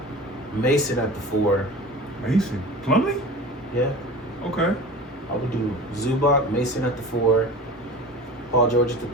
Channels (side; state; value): both; normal; correlation 0.35